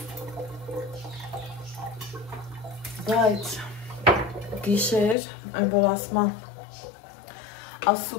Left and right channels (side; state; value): right; drops out; at 5.2 s